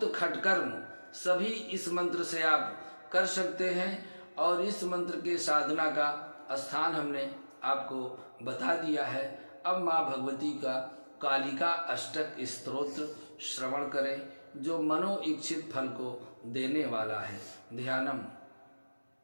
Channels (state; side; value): inverted; both; correlation -1.00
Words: खटकर्म सभी इस मंत्र से आप कर सकते हैं। और इस मंत्र के साधना का स्थान हमने आपको बता दिया है। अब माँ भगवती का कालिका अष्टक स्तोत्र श्रवण करें, जो मनो इच्छित फल को देने वाला है। ध्यानम